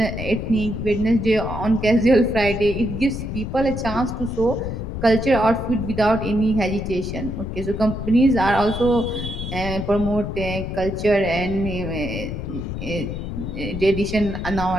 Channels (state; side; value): noise; left; rumble, 6 dB below the sound